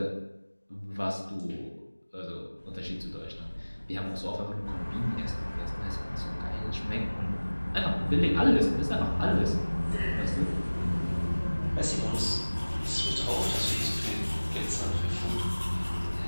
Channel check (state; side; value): inverted; both; correlation -1.00